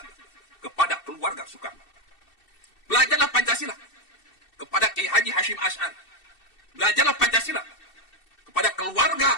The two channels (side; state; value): right; late; 2.7 ms